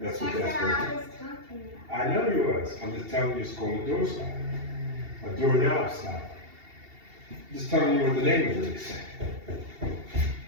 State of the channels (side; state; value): left; late; 2.8 ms